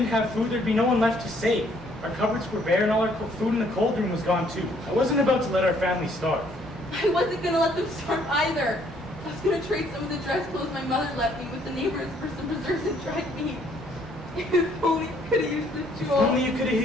have food, there'd be no one left to save. Our cupboards were bare and all our food in the cold room was gone too. I wasn't about to let our family starve. I wasn't going to let them starve either. I was going to trade some of the dress clothes my mother left me with the neighbors for some preserves and dried meat. If only you could have used the jewel. If only you could have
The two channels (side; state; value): both; normal; correlation 0.64